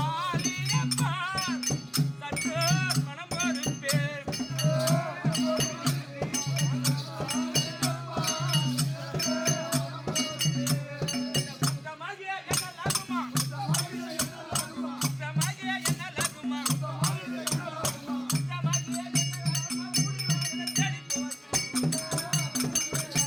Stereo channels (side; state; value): both; identical; correlation 1.00